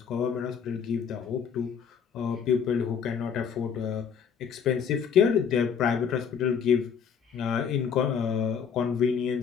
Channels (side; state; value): right; quieter; 7.1 dB